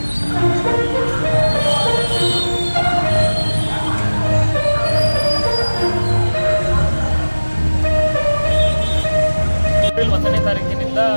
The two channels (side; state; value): both; inverted; correlation -1.00